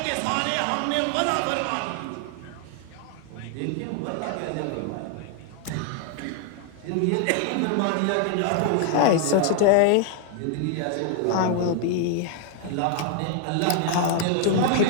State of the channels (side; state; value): both; different; correlation 0.00